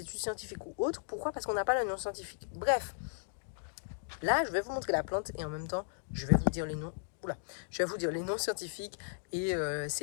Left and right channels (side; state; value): right; silent; digital silence